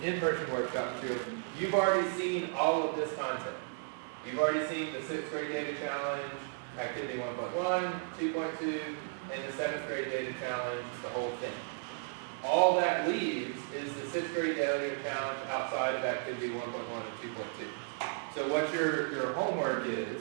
in-person workshop materials, you've already seen all of this content. You've already seen the 6th grade data challenge, activity 1.1, 2.2, and the 7th grade data challenge, the whole thing. All that leaves is the 6th grade data challenge outside of activity 1.1 and 2.2. So what your homework is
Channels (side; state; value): left; silent; 55 dB below the other